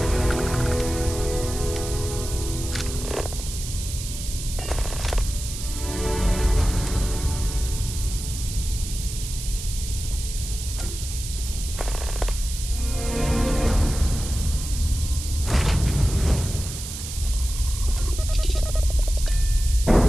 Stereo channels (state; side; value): noise; right; hiss, 9 dB below the sound